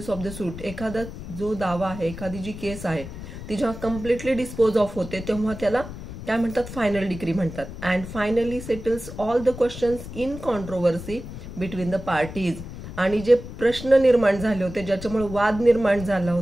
of the suit. एखादा जो दावा आहे, एखादी जी केस आहे ती जेव्हा कम्प्लिटली डिस्पोज ऑफ होते तेव्हा त्याला काय म्हणतात, फायनल डिग्री म्हणतात. And finally settles all the questions in controversy between the parties. आणि जे प्रश्न निर्माण झाले होते, ज्याच्यामुळे वाद निर्माण झाला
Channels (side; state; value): left; noise; rumble, 11 dB below the sound